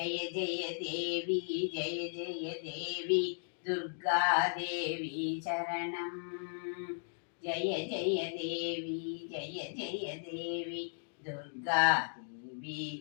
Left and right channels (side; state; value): right; silent; digital silence